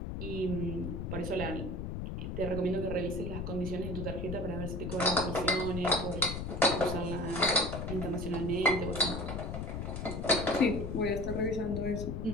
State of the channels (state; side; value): noise; left; rumble, 4 dB below the sound